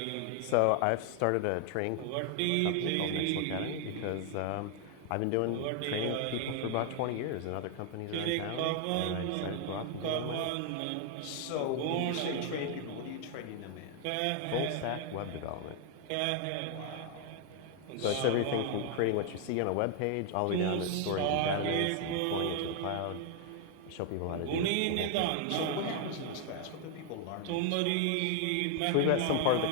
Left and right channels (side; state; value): both; different; correlation 0.00